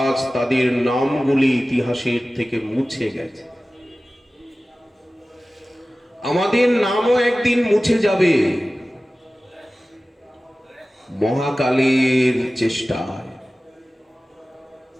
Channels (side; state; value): both; normal; correlation 0.96